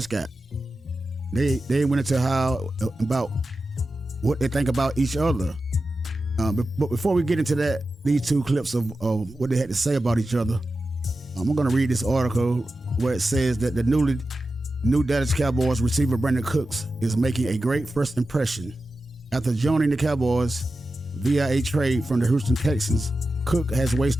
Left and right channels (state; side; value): normal; both; correlation 0.92